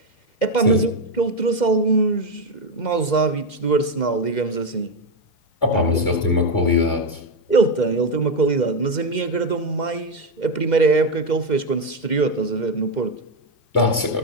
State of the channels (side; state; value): right; late; 2.1 ms